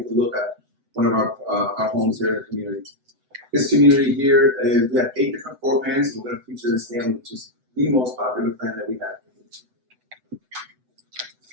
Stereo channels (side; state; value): left; late; 7.9 ms